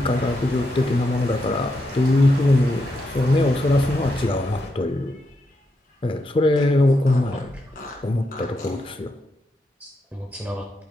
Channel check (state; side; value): normal; both; correlation 0.83